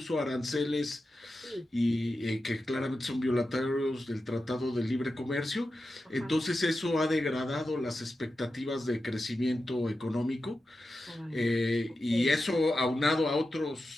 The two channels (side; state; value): both; normal; correlation 0.91